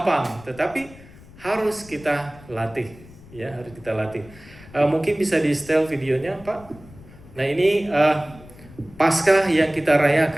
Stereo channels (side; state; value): left; noise; rumble, 21 dB below the sound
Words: Tetapi harus kita latih, ya, harus kita latih. Mungkin bisa di setel videonya, Pak. Nah ini Paskah yang kita